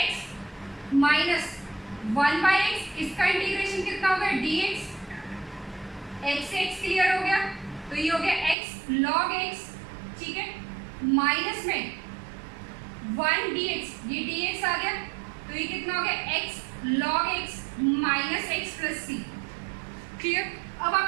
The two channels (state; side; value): drops out; left; at 8.6 s